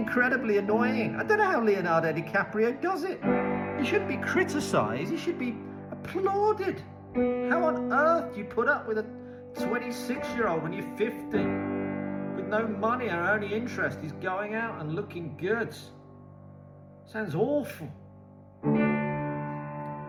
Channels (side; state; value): both; identical; correlation 1.00